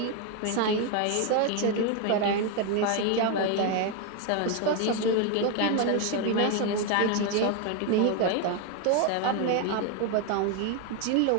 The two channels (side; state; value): both; different; correlation 0.01